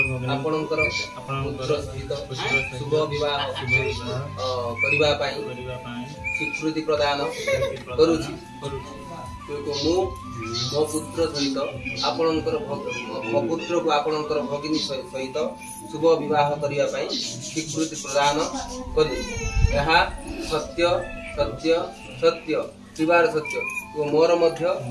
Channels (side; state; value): both; identical; correlation 1.00